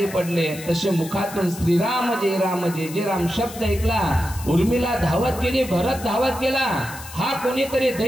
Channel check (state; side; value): noise; left; hiss, 14 dB below the sound